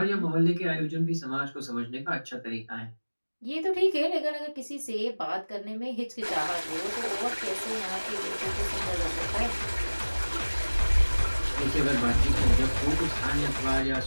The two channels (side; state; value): both; inverted; correlation -1.00